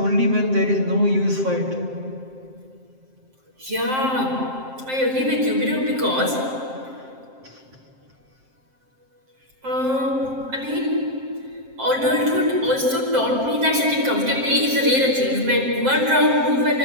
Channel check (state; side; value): late; left; 7.6 ms